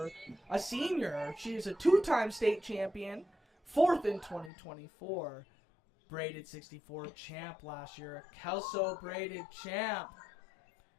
a senior. She is a 2-time state champion, 4th in 2024, braided 64 champ last year, a Kelso braided champ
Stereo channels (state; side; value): drops out; right; at 4.5 s